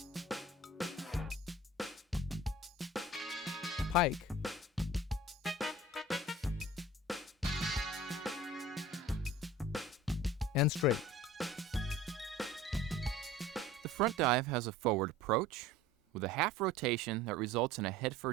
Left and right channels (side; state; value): both; normal; correlation 0.43